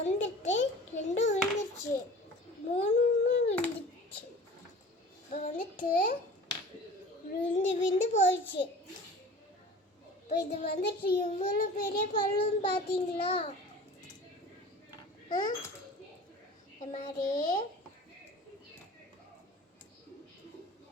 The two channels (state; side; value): normal; both; correlation 0.41